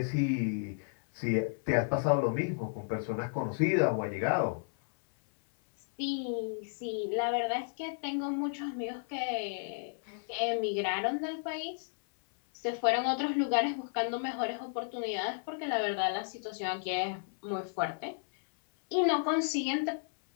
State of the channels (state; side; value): silent; right; 56 dB below the other